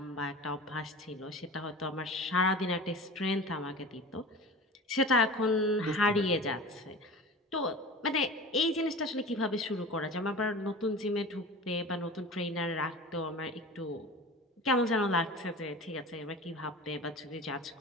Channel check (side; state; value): both; normal; correlation 0.35